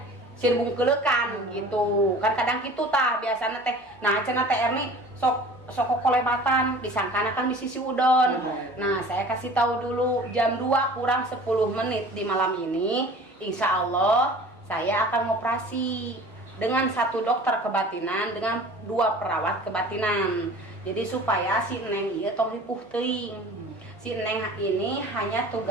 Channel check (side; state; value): both; normal; correlation 0.44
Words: sirbung kelekan gitu kan kadang gitu tah biasanya teh. Nah cenah teh Erni sok kolebatan disangkana kan di sisi udon. Nah saya kasih tahu dulu jam 2 kurang 10 menit di malam ini insya Allah saya akan operasi dengan 1 dokter kebatinan dengan 2 perawat kebatinan. Jadi supaya si Neng ieu tong ripuh teuing. Si Neng ini hanya